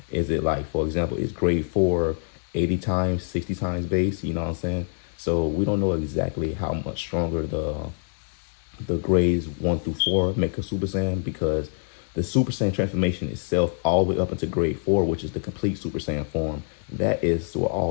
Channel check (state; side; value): silent; right; digital silence